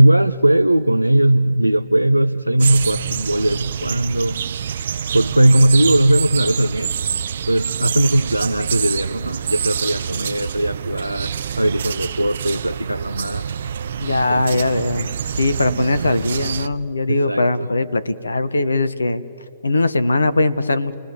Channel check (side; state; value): both; inverted; correlation -0.92